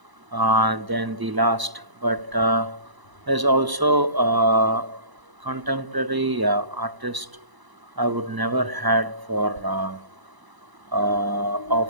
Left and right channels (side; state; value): left; late; 1.0 ms